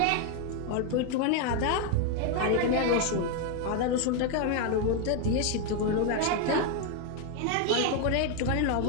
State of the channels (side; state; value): both; different; correlation 0.01